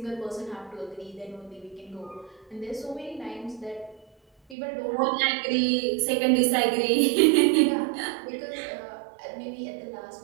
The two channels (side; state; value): left; drops out; at 4.5 s